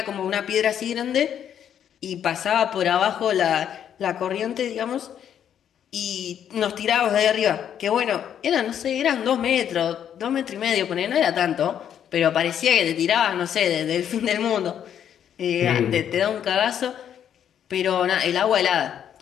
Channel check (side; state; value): right; quieter; 9.3 dB